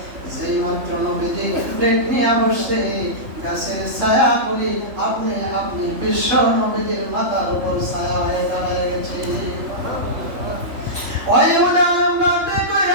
যেই মাত্র নবীজি প্লেট নিয়ে বসে, গাছের ছায়াগুলি আপনি আপনি বিশ্ব নবীজির মাথার উপর ছায়া হয়ে দাঁড়িয়ে গেছে। ওই উদাহরণ বাদে কই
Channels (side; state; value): left; late; 3.5 ms